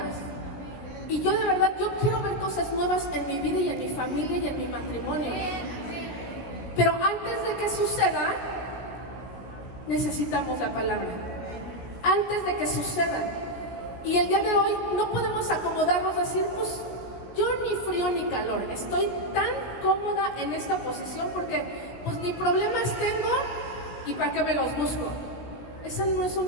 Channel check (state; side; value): late; right; 16 ms